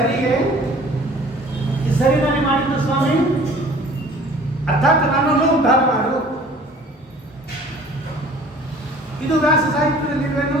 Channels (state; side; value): normal; both; correlation 0.50